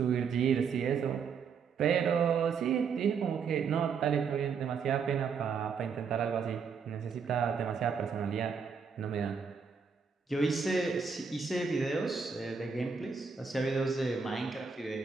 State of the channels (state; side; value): quieter; left; 5.9 dB